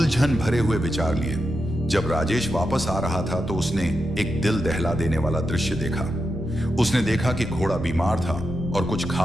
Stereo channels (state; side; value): normal; both; correlation 0.87